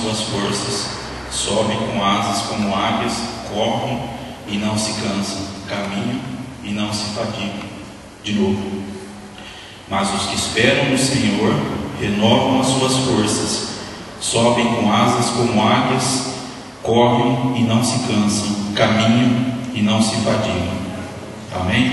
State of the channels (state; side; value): identical; both; correlation 1.00